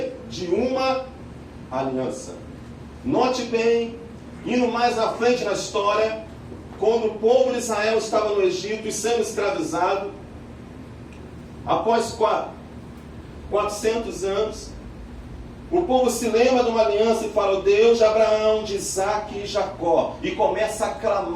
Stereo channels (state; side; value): identical; both; correlation 1.00